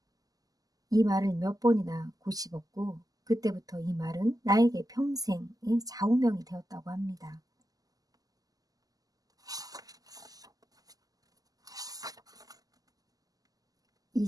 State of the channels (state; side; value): late; left; 0.17 ms